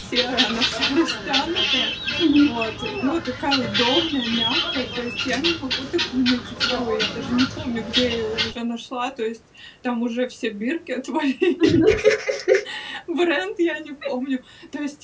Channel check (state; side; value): identical; both; correlation 1.00